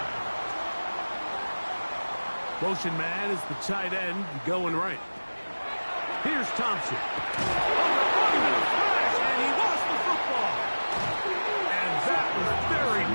Motion man is the tight end going right. Here's Thompson. And he lost the football. And that was very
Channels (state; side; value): inverted; both; correlation -1.00